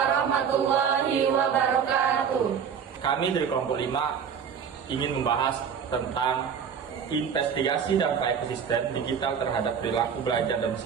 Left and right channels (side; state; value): left; quieter; 7.2 dB